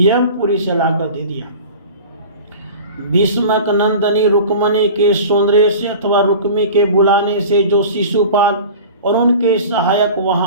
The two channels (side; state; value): both; inverted; correlation -0.38